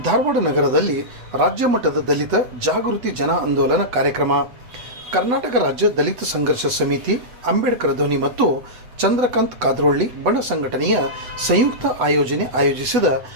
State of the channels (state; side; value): late; left; 8.0 ms